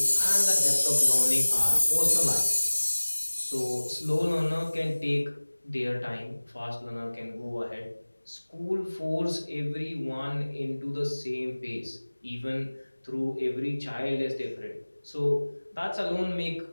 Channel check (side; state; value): both; inverted; correlation -1.00